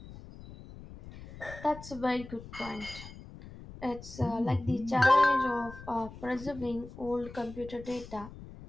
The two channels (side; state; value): left; noise; rumble, 15 dB below the sound